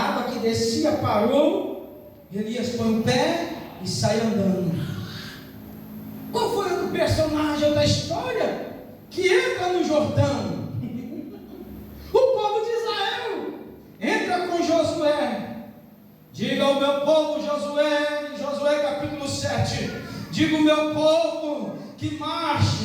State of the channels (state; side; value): identical; both; correlation 1.00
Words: que descia parou, Elias põe o pé e sai andando. Qual foi o personagem da história que entra no Jordão? O povo de Israel. Diga ao meu povo, Josué, em Josué capítulo 7, diga ao meu povo que